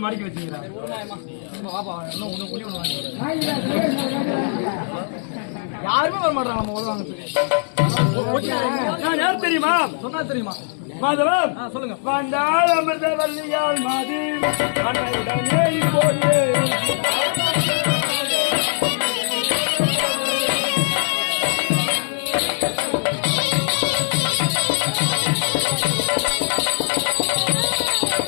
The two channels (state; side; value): silent; right; digital silence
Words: மடிக்கு வச்சுக்கிறா? யாருமே வர மாட்டாங்க நம்ம உதவாங்க. நான் யார் தெரியுமா? சொன்னா தெரியுமா? மாதவம் சொல்லுங்க. வந்தால் அமிர்த வல்லியால் மாதி அன்னையுடனே இப்போது